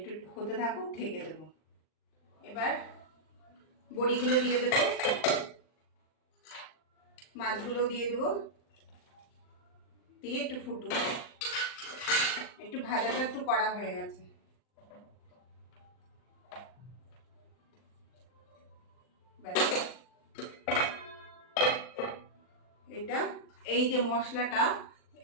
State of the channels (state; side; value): late; right; 39 ms